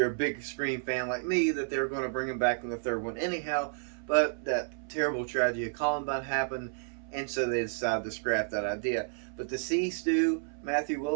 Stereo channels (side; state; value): left; silent; 57 dB below the other